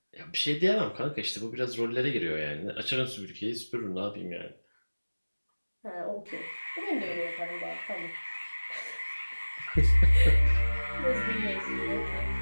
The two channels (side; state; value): both; inverted; correlation -1.00